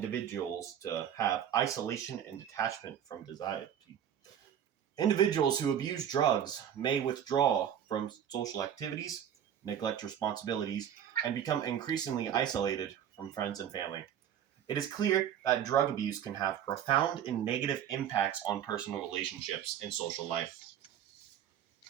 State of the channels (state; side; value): quieter; left; 9.6 dB